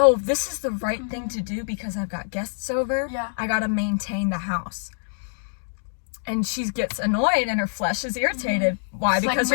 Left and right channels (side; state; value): right; silent; digital silence